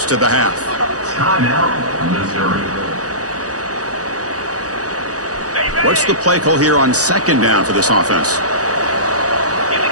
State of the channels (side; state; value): left; late; 0.67 ms